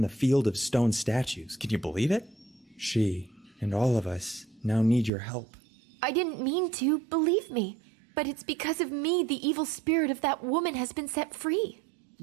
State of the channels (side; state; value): left; drops out; at 5.1 s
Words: field of stone statues. Can you believe it? She and all of us now need your help. I didn't mean to, believe me. But it's because of me the evil spirit of that woman has been set free.